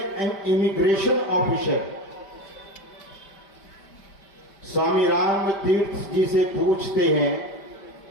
इमिग्रेशन ऑफिसर स्वामी राम तीर्थ जी से पूछते हैं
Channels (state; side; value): late; right; 5.1 ms